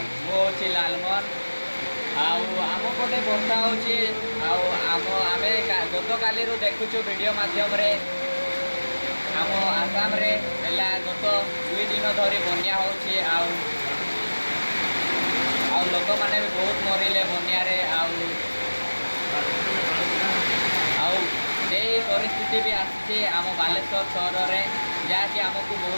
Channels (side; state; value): both; inverted; correlation -1.00